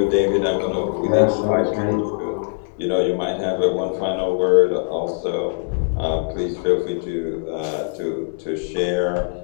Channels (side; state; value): right; silent; digital silence